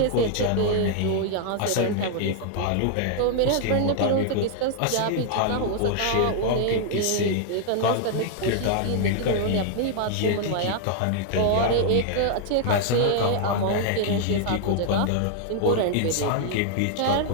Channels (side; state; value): both; different; correlation 0.00